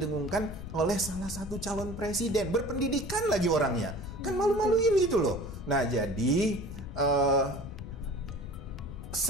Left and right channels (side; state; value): left; noise; rumble, 10 dB below the sound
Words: oleh salah satu calon presiden. Berpendidikan lagi orangnya. Kan malu-maluin gitu loh. Nah, jadi